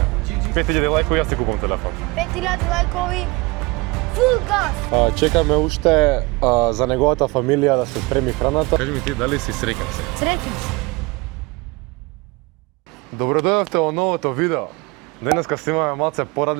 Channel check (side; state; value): left; quieter; 24.6 dB